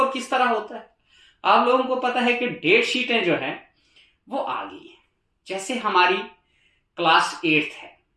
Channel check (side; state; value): both; identical; correlation 1.00